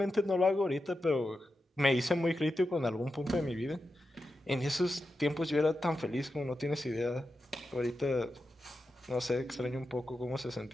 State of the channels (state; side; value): normal; both; correlation 0.89